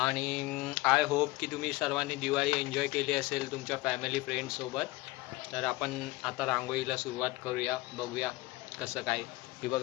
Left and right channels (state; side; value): quieter; right; 20.6 dB